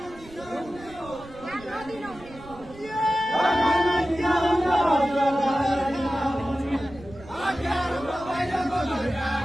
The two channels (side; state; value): right; noise; rumble, 19 dB below the sound